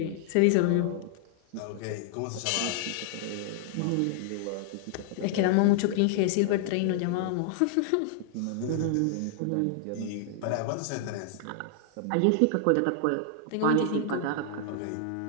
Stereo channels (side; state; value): both; different; correlation 0.00